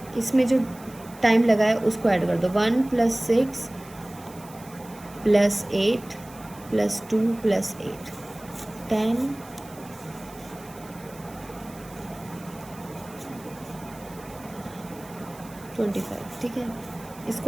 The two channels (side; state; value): right; noise; hiss, 21 dB below the sound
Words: इसमें जो टाइम लगा है उसको ऐड कर दो, 1 + 6 + 8 + 2 + 8 10 25। ठीक है,